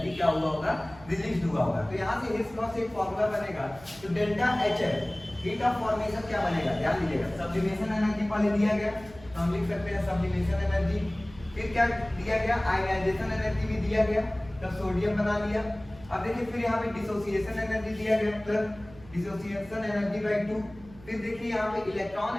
क्या हुआ होगा, रिलीज हुआ होगा। तो यहाँ से हेस लॉ से एक फॉर्मूला बनेगा, तो delta HF heat of formation क्या बनेगा, ध्यान दीजिएगा। सब्लिमेशन एनर्जी पहले दिया गया, तो हम लिख सकते हैं सब्लिमेशन एनर्जी। फिर क्या दिया गया, आयनाइजेशन एनर्जी भी दिया गया, तब सोडियम बना लिया। अब देखिए फिर यहाँ पे डिसोसिएशन एनर्जी दिया गया, प्लस डिसोसिएशन एनर्जी बाय 2। फिर देखिए यहाँ पे इलेक्ट्रॉन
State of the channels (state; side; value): noise; right; hum, 20 dB below the sound